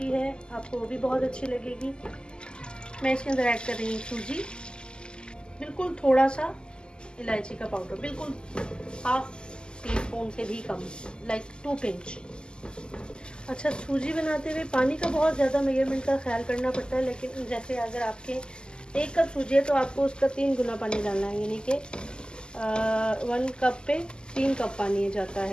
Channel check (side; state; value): right; late; 0.047 ms